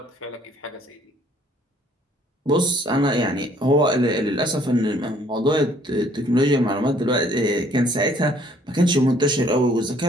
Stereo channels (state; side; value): normal; both; correlation 0.61